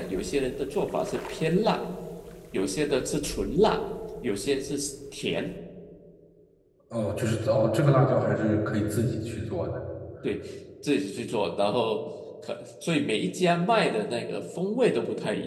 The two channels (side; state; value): both; identical; correlation 1.00